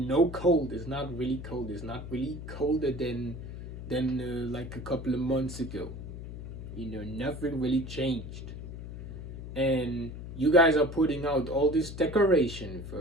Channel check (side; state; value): left; noise; hum, 9 dB below the sound